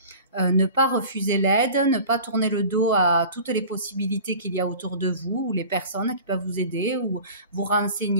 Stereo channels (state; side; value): inverted; both; correlation -0.40